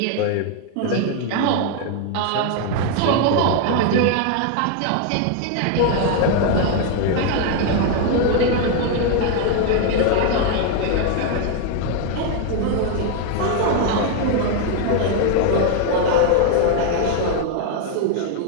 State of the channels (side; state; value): both; different; correlation 0.01